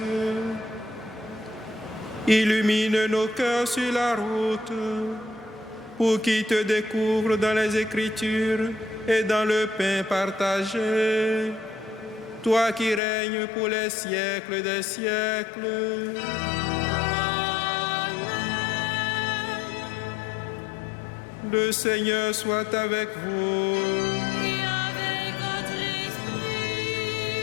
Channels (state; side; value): drops out; right; at 13.0 s